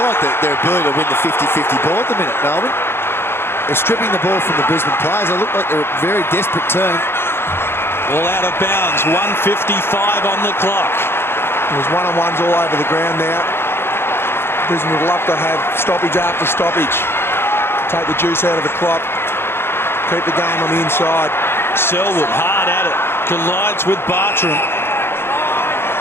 like their ability to win the 50-50 ball at the minute, Melbourne. They're stripping the ball from the Brisbane players. They look like they're a very desperate team. All out of bounds. 1:55 on the clock. There's one-on-ones all over the ground now. Brisbane would love to have stoppage after stoppage. Take the juice out of the clock. Keep the game on the inside. Selwood hard at it. Collides with Bartram.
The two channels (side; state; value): right; late; 0.11 ms